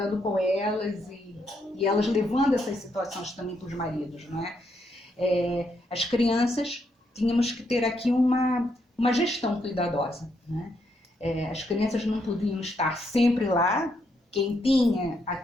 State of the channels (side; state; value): both; normal; correlation 0.77